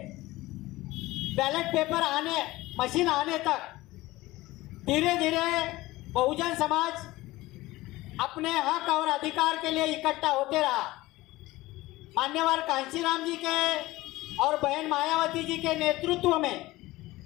बैलेट पेपर मशीन आने तक धीरे धीरे बहुजन समाज अपने हक और अधिकार के लिए इकट्ठा होते रहा। मान्यवर कांशीराम जी के और बहन मायावती जी के नेतृत्व में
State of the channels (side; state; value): right; quieter; 18.7 dB